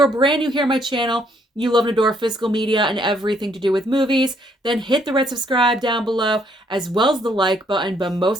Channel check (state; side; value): normal; both; correlation 0.68